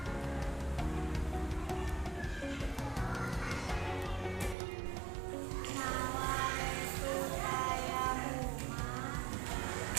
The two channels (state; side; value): drops out; left; at 4.5 s